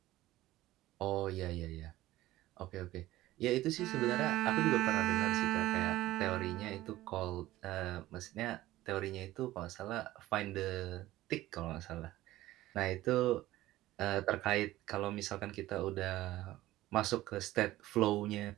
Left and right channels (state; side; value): quieter; left; 16.2 dB